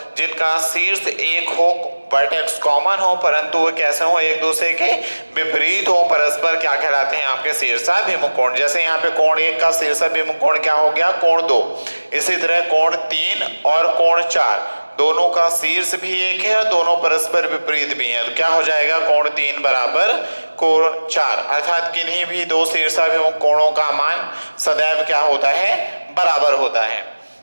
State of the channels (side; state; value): both; inverted; correlation -1.00